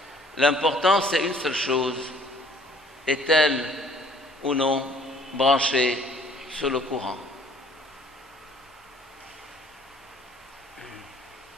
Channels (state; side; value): normal; both; correlation 0.56